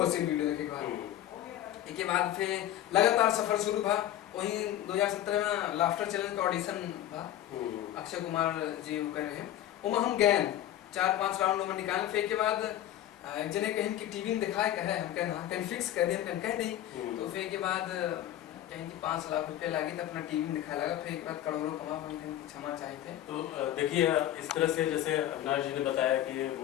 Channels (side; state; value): right; quieter; 12.5 dB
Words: हंसी वीडियो देखे के बाद। इसके बाद फिर लगातार सफर शुरू हुआ। वहीं 2017 में लाफ्टर चैनल का ऑडिशन था, अक्षय कुमार जी वो कर रहे हैं, वो हम गए 4-5 राउंड में निकाल। फिर के बाद एक जने कहीं कि टीवी में दिखाए कहे, हम कहना कहीं फिक्स कर दे, हम कह नहीं। तो फिर के बाद कहीं कि 5 लाख रुपए लगे तो अपना टीवी में दिखाया लगा। फिर एक बार करोड़ों कमा, हम कहीं क्षमा चाहे थे। तो देखिए, इस तरह से जैसे अविनाश जी ने बताया कि